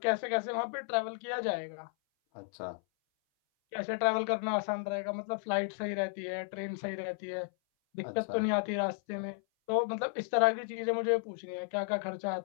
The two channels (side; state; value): right; silent; 55 dB below the other